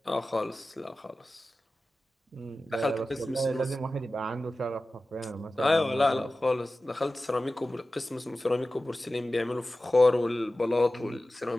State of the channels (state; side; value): normal; both; correlation 0.95